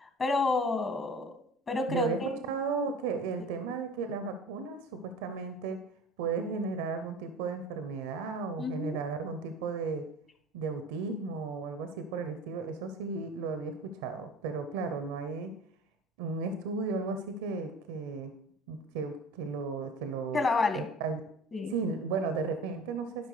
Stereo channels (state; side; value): normal; both; correlation 0.40